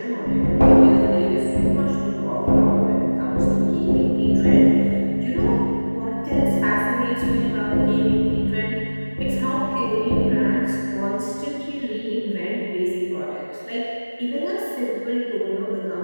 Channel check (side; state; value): both; inverted; correlation -1.00